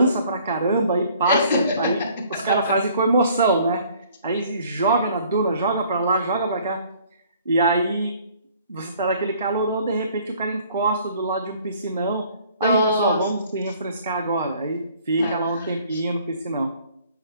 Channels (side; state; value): both; inverted; correlation -0.57